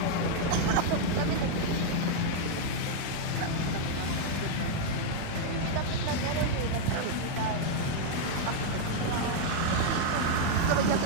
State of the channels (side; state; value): both; different; correlation 0.00